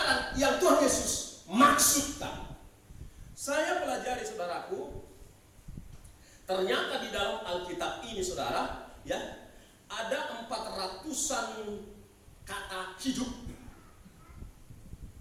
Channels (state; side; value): identical; both; correlation 1.00